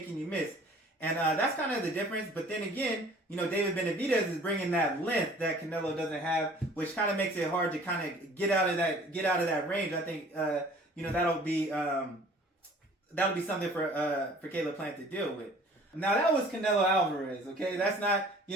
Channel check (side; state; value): both; normal; correlation 0.51